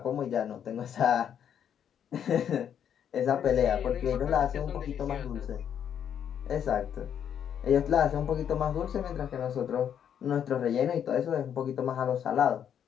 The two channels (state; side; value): quieter; right; 8.9 dB